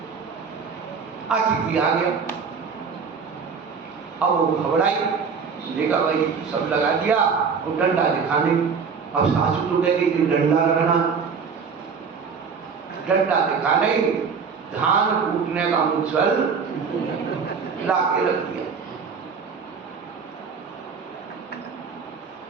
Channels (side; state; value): left; quieter; 5.8 dB